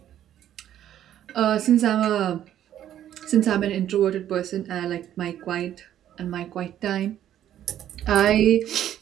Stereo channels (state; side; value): quieter; left; 11.2 dB